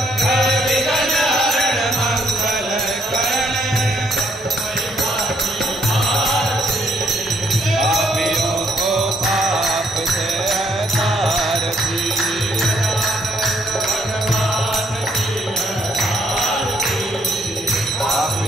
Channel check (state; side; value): normal; both; correlation 0.70